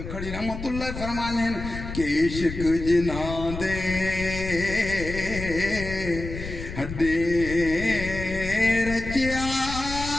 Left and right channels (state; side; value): noise; left; rumble, 8 dB below the sound